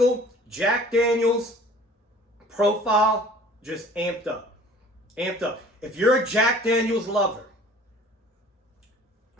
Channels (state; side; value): normal; both; correlation 0.49